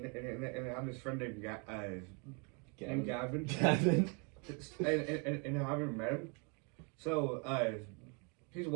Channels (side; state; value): left; quieter; 34.7 dB